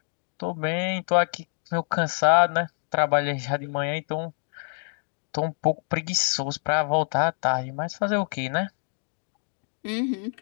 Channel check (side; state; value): right; silent; 61 dB below the other